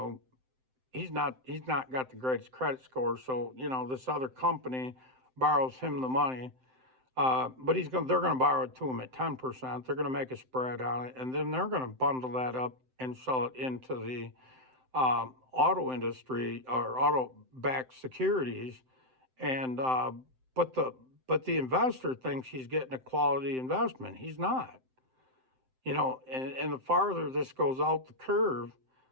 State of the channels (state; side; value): late; left; 7.8 ms